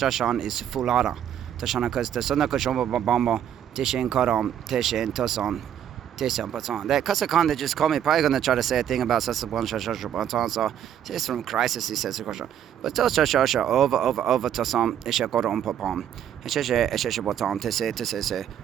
is Fulada. Tashana because the Sona Koshomba Bamba, Tishin Karam, Tishin Tosan, Tishan Patan. That Casa Khan, they just call me, probably going to try to say a thing about Sasabon Shashashan. So, it's from Crisis, he says the question. But Toshasha over Tosan, Isha Koram Papam, Eshe Botan, Tese,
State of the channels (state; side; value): quieter; left; 9.9 dB